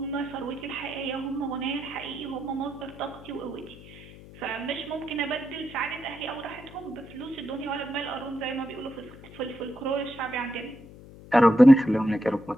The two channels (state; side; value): noise; left; hum, 18 dB below the sound